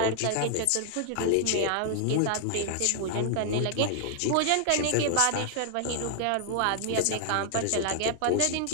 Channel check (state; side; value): different; both; correlation 0.00